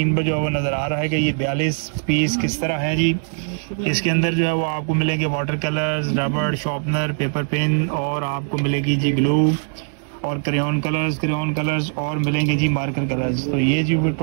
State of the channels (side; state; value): left; silent; 65 dB below the other